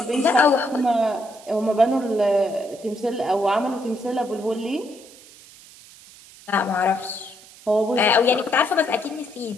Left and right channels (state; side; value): noise; right; hiss, 22 dB below the sound